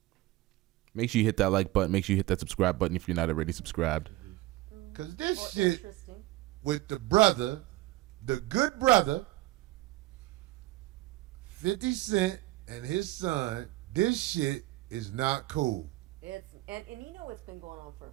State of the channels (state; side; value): quieter; left; 17.8 dB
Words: Make sure you hit that like button. Make sure you hit that subscribe button if you're not already subscribed. Because this shit with the brother, the good brother, 50 Cent and his son, this shit is not cool. And you know it's been going on for